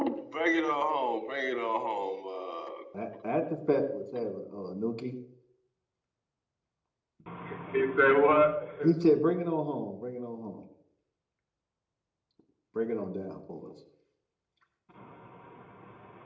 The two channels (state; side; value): identical; both; correlation 1.00